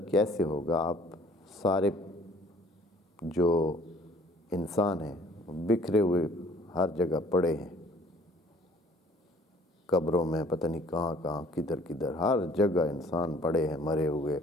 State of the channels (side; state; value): both; normal; correlation 0.55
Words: کیسے ہوگا، آپ سارے جو انسان ہیں بکھرے ہوئے ہر جگہ پڑے ہیں، قبروں میں پتہ نہیں کہاں کہاں کدھر کدھر ہر جگہ انسان پڑے ہیں، مرے ہوئے